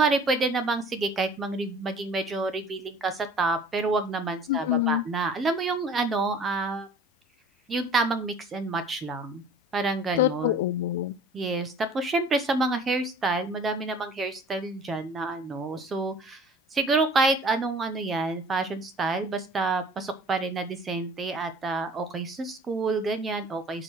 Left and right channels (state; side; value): normal; both; correlation 0.47